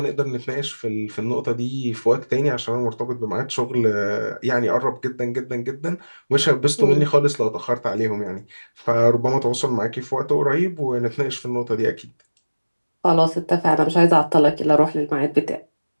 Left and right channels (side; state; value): both; inverted; correlation -1.00